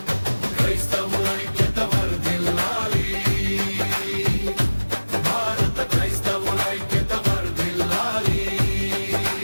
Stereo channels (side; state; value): both; inverted; correlation -1.00